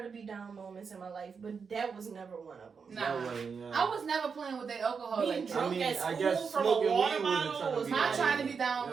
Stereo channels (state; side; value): quieter; left; 5.7 dB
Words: to be down moments in my life, but that was never one of them. Nah. That wasn't, down. I was never playing with that alcohol Being like that. drunk I mean, at I school guess from a smoking water weed wasn't bottle trying to was be My down. trying to be down